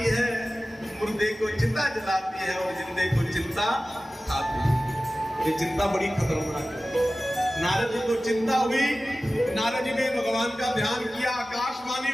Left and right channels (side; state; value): both; normal; correlation 0.96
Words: है, मुर्दे को चिता जलाती है और जिंदे को चिंता खाती है। ये चिंता बड़ी खतरनाक है। नारद जी को चिंता हुई, नारद जी ने भगवान का ध्यान किया, आकाशवाणी